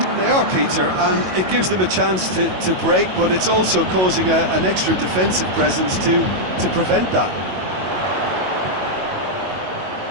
They are, Peter, and it gives them a chance to break, but it's also causing an extra defensive presence to prevent that.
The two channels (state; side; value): late; left; 22 ms